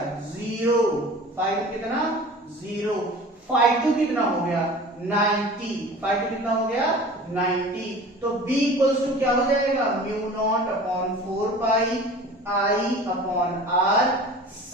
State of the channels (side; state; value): both; normal; correlation 0.41